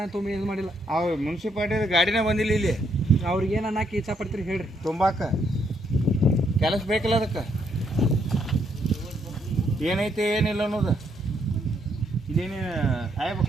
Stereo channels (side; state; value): both; normal; correlation 0.73